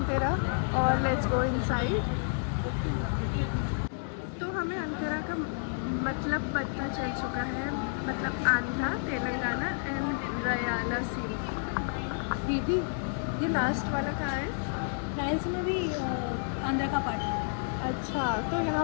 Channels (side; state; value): right; silent; digital silence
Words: और लेट्स गो इनसाइड। तो हमें अंधेरा का मतलब पता चल चुका है, मतलब आंध्रा, तेलंगाना एंड रयाला सी। दीदी ये लास्ट वाला कहाँ है? फ्रांस में भी आंध्र का पार्ट है। अच्छा, तो